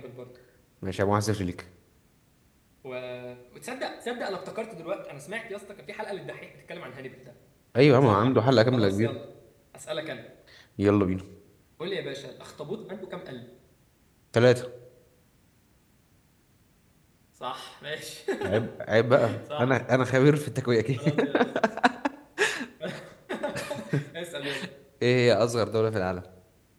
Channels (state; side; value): identical; both; correlation 1.00